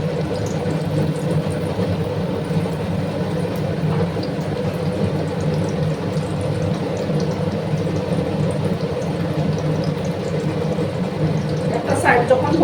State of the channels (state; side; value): identical; both; correlation 1.00